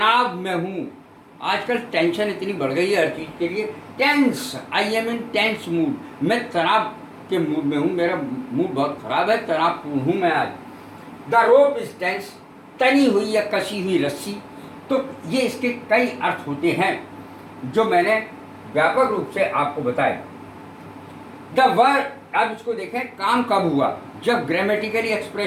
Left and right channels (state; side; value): identical; both; correlation 1.00